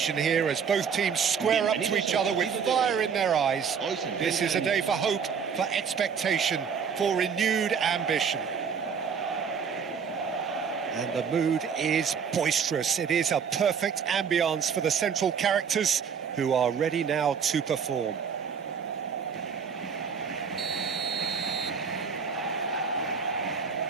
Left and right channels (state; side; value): quieter; left; 6.6 dB